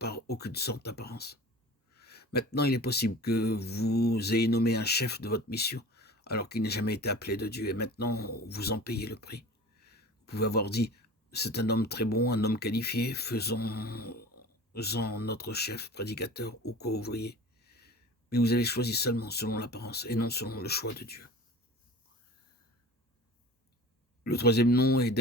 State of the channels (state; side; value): normal; both; correlation 0.39